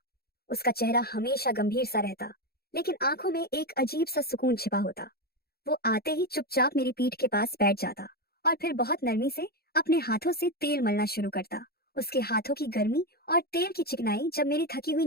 उसका चेहरा हमेशा गंभीर सा रहता, लेकिन आंखों में एक अजीब सा सुकून छिपा होता। वो आते ही चुपचाप मेरी पीठ के पास बैठ जाता और फिर बहुत नरमी से अपने हाथों से तेल मलना शुरू करता। उसके हाथों की गर्मी और तेल की चिकनाई जब मेरी थकी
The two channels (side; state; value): right; late; 0.45 ms